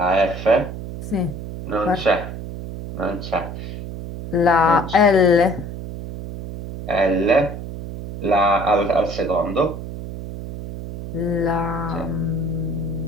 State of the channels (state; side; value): noise; right; hum, 9 dB below the sound